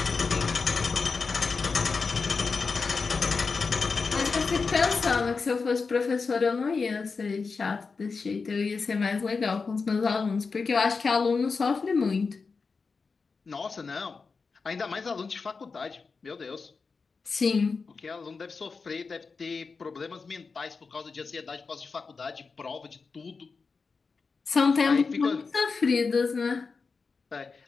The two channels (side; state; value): right; quieter; 4.7 dB